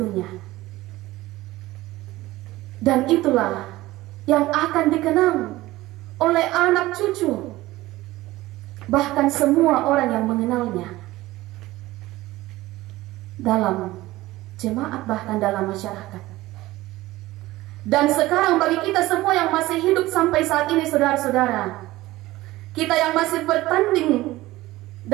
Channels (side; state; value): left; quieter; 17.9 dB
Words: Dan itulah yang akan dikenang oleh anak cucu, bahkan semua orang yang mengenalnya, dalam jemaat bahkan dalam masyarakat. Dan sekarang bagi kita semua yang masih hidup sampai saat ini, saudara-saudara, kita yang masih bertanding